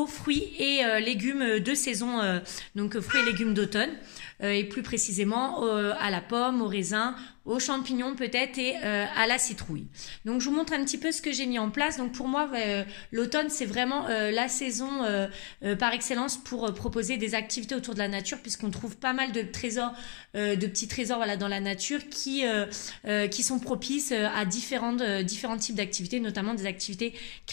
fruits et légumes de saison donc fruits et légumes d'automne et plus précisément à la pomme, au raisin, aux champignons peut-être et à la citrouille. Donc je vous montre un petit peu ce que j'ai mis en place. Donc pour moi l'automne c'est vraiment la saison par excellence pour proposer des activités autour de la nature puisqu'on trouve pas mal de trésors, de petits trésors voilà dans la nature qui sont propices à différents types d'activités, notamment des activités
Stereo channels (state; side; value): quieter; right; 35.3 dB